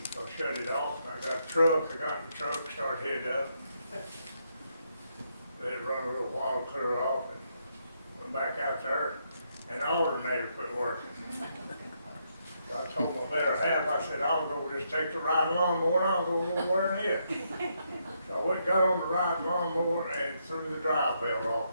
so I shut it off. And I got a truck. I got in the truck, started heading up. Let it run a little while, clear off, and went back out there. And the alternator quit working. I told my better half, I said, I'll go just take the ride lawnmower and I'll go over there and hit. So I went and got on the ride lawnmower and threw the drive belt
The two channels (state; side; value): inverted; both; correlation -0.78